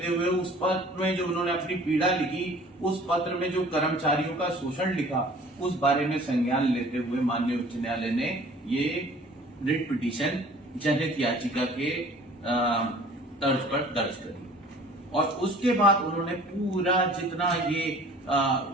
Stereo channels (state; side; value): normal; both; correlation 0.49